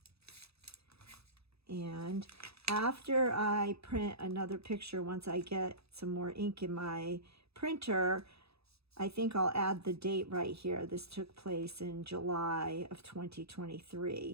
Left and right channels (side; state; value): left; late; 0.78 ms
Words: And after I print another picture, once I get some more ink in my printer, I think I'll add the date right here. This took place in July of